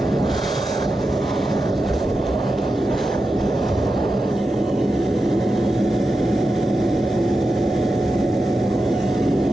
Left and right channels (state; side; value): normal; both; correlation 0.90